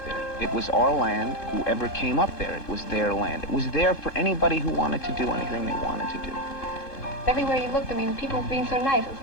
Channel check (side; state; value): right; late; 3.7 ms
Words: there. It was our land. Whoever came up there, it was their land. It was there for anybody who wanted to do anything they wanted to do. Everywhere you looked, I mean, people being so nice. It's